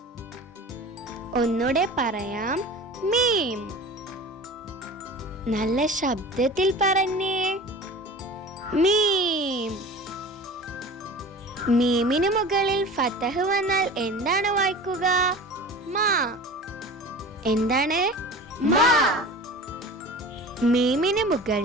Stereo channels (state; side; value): normal; both; correlation 0.37